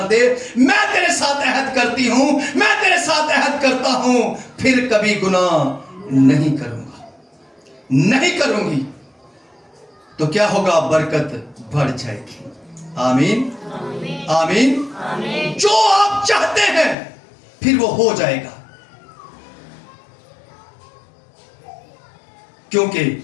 दे, मैं तेरे साथ अहद करती हूं, मैं तेरे साथ अहद करता हूं, फिर कभी गुनाह नहीं करूंगा, नहीं करूंगी, तो क्या होगा? बरकत बढ़ जाएगी। आमीन आमीन। जो आप चाहते हैं फिर वो हो जाएगा, क्योंकि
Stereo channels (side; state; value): right; drops out; at 16.9 s